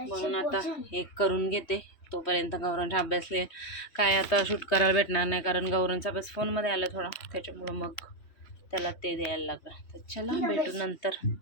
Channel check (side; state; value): right; late; 3.2 ms